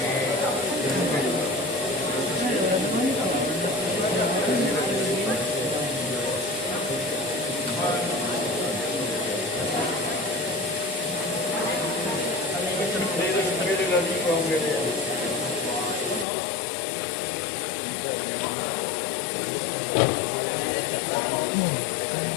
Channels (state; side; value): drops out; right; at 16.2 s